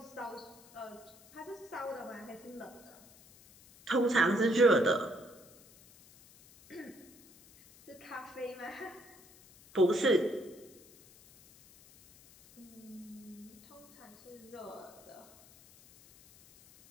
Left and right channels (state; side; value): noise; left; hiss, 23 dB below the sound